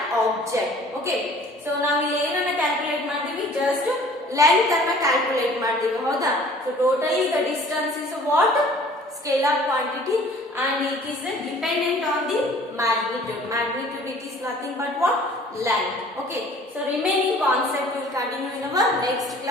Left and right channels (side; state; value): both; normal; correlation 0.51